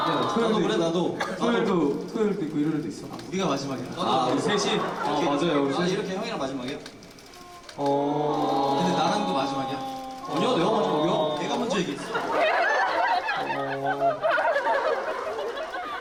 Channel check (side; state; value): both; identical; correlation 1.00